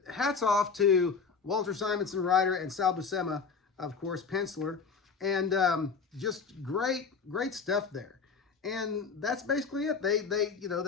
hats off to Walter Simonson, writer, and Sal Buscema, of course, penciler. And just great stuff there. And that's basically it. They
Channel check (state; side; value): quieter; right; 5.3 dB